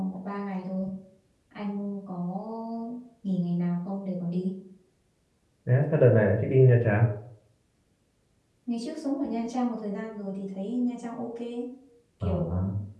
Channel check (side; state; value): both; identical; correlation 1.00